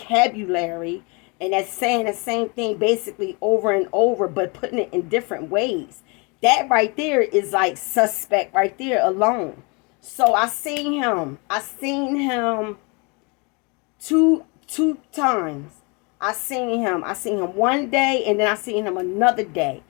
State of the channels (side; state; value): right; quieter; 30.7 dB